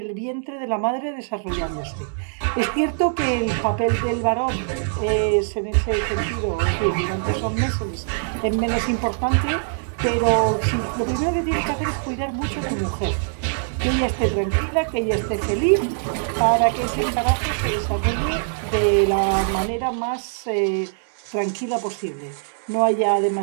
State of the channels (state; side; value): silent; left; digital silence